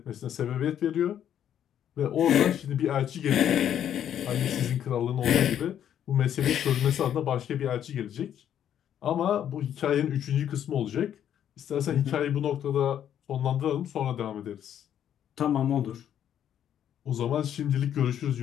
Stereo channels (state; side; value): quieter; right; 9.9 dB